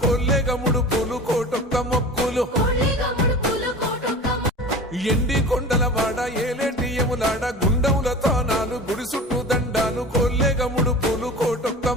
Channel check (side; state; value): both; normal; correlation 0.36